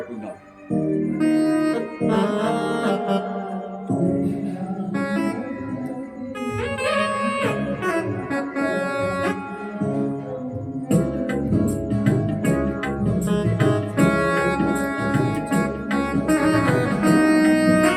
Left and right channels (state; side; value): identical; both; correlation 1.00